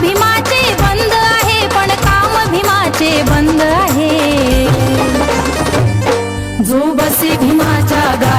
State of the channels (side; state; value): both; identical; correlation 1.00